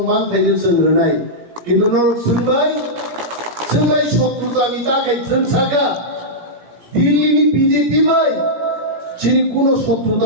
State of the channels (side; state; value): left; late; 18 ms